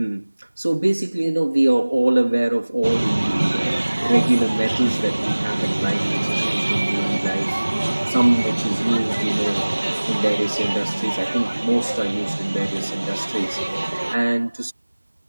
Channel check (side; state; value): both; inverted; correlation -1.00